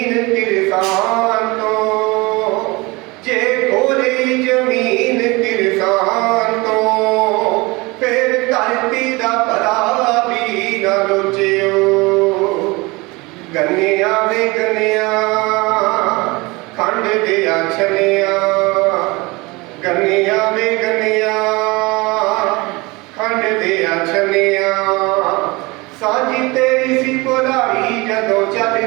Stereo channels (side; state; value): left; quieter; 24.3 dB